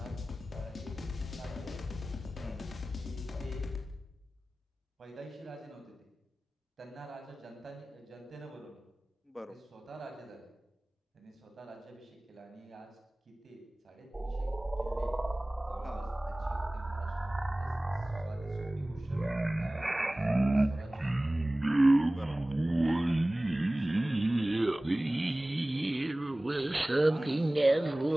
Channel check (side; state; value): both; normal; correlation 0.98